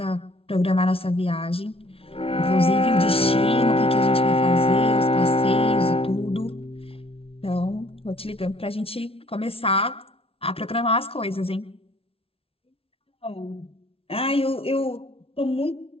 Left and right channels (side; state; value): right; late; 0.27 ms